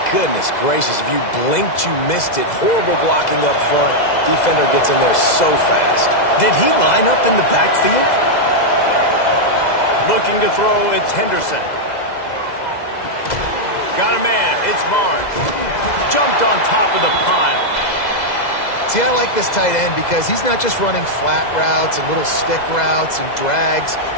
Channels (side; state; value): right; late; 2.0 ms